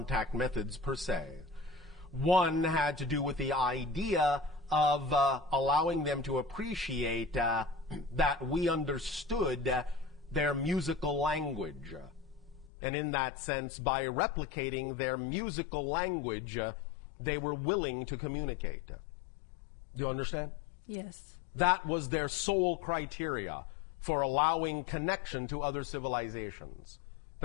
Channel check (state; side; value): drops out; right; at 12.7 s